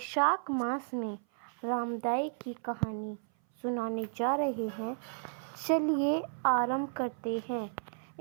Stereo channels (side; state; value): left; silent; 56 dB below the other